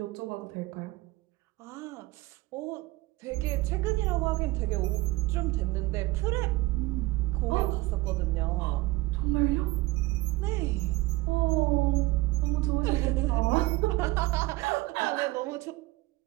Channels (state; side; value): quieter; left; 19.7 dB